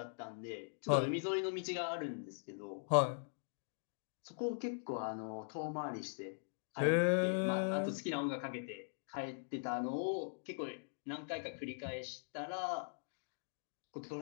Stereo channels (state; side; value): silent; right; digital silence